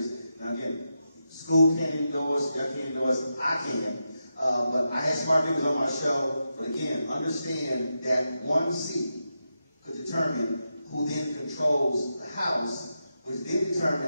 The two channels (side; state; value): both; inverted; correlation -0.88